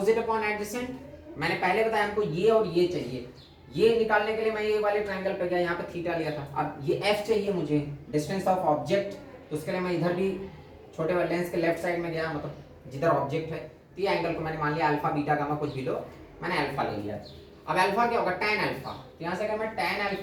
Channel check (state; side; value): identical; both; correlation 1.00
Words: upon adjacent. मैंने पहले बताया हमको ये और ये चाहिए। ये निकालने के लिए मैं ये वाले ट्रायंगल पे गया, यहाँ पे थीटा लिया था। अब ये f चाहिए मुझे, डिस्टेंस ऑफ ऑब्जेक्ट। तो उसके लिए मैं इधर भी छोटे वाले लेंस के लेफ्ट साइड में गया, मतलब जिधर ऑब्जेक्ट है। तो ये एंगल को मैंने मान लिया अल्फा बीटा गामा कुछ भी लो, मैंने अल्फा ले लिया। अब अल्फा क्या होगा? tan alpha. तो यहाँ से अगर मैं tan